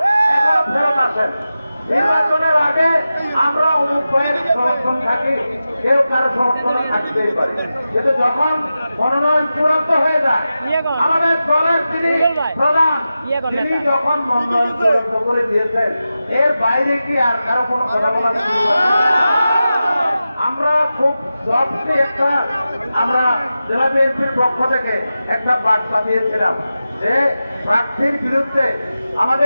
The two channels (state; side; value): inverted; both; correlation -0.93